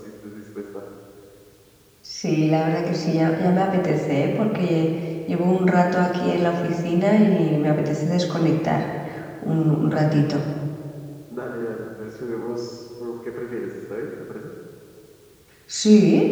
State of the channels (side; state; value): both; identical; correlation 1.00